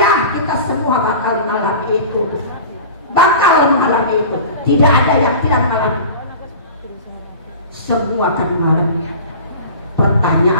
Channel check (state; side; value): inverted; both; correlation -0.37